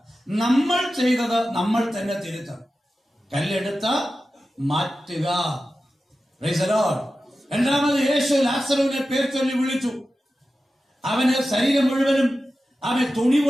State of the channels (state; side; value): normal; both; correlation 0.93